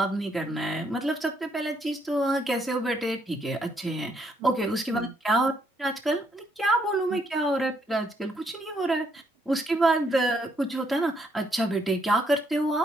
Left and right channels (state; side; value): normal; both; correlation 0.72